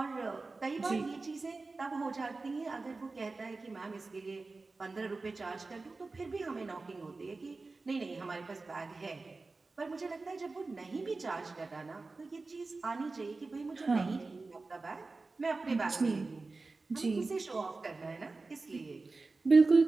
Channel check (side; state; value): left; quieter; 3.7 dB